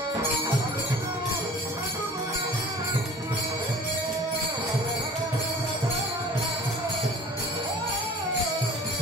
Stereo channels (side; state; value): both; normal; correlation 0.46